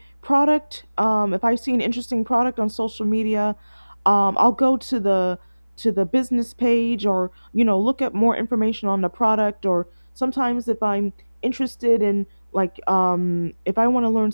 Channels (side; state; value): both; inverted; correlation -1.00